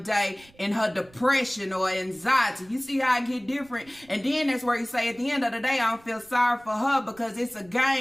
day in her depression or anxiety. You see how I get different? And then that's where you say at the end of the day, I don't feel sorry for her because it's a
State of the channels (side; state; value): right; noise; rumble, 28 dB below the sound